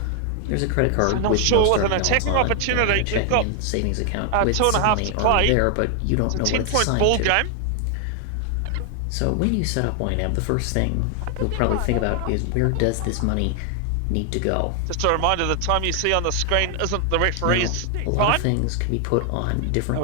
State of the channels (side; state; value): both; different; correlation 0.00